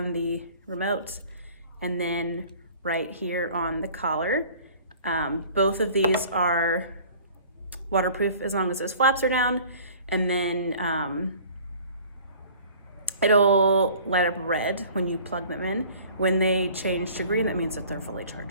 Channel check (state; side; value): inverted; both; correlation -0.48